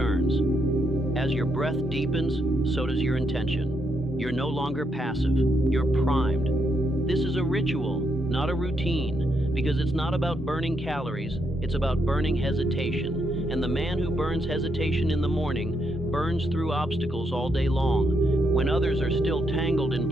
As your breath deepens, so does your intention. You're no longer passive, you're primed. This is a ritual, not a routine, because it's not about burning calories, it's about burning hesitation. And the man who burns hesitation in the morning burns through obstacles all day long. When others are still tangled in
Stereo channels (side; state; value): both; normal; correlation 0.78